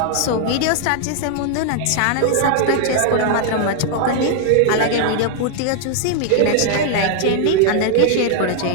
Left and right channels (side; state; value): both; different; correlation 0.00